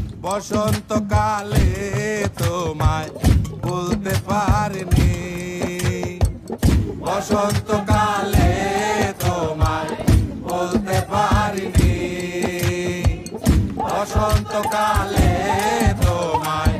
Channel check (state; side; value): identical; both; correlation 1.00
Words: বসন্তকালে তোমায় বলতে পারিনি। বসন্তকালে তোমায় বলতে পারিনি। বসন্তকালে তোমায়